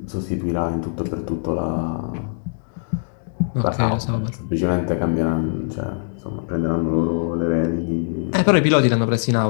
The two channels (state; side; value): silent; right; digital silence